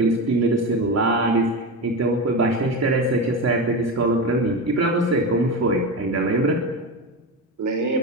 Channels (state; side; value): normal; both; correlation 0.20